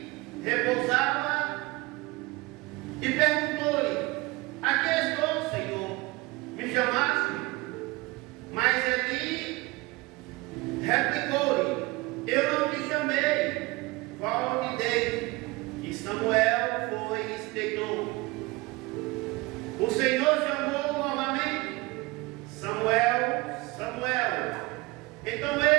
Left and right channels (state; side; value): quieter; left; 22.9 dB